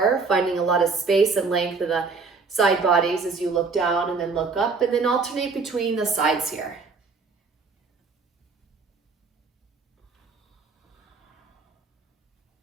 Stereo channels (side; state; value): left; quieter; 4.6 dB